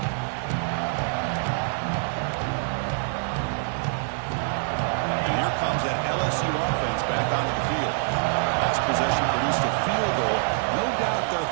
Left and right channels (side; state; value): left; silent; 58 dB below the other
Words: LSU offense back onto the field. Last possession produced a field goal. No doubt they're